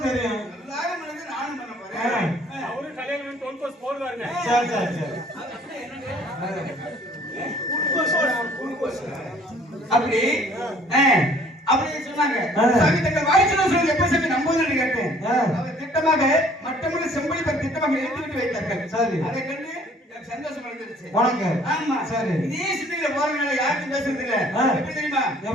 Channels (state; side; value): normal; both; correlation 0.56